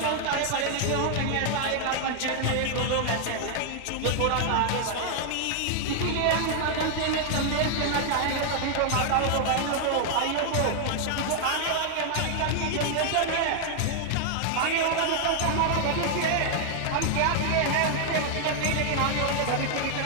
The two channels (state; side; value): different; both; correlation 0.00